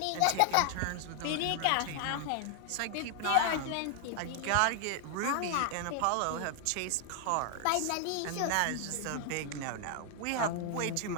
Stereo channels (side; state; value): both; different; correlation 0.00